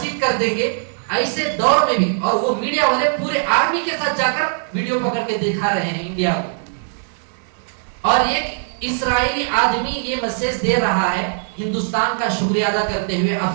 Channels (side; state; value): left; silent; 66 dB below the other